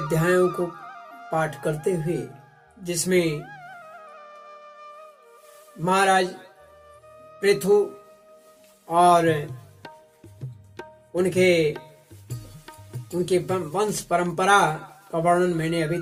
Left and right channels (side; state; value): both; identical; correlation 1.00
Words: को पाठ करते हुए, जिसमें महाराज पृथु और उनके वंश परंपरा का वर्णन मैंने अभी